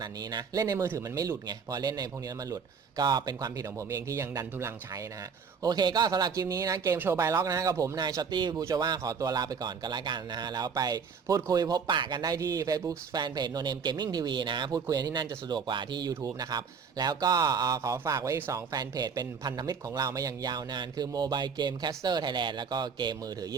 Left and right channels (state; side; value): quieter; left; 6.0 dB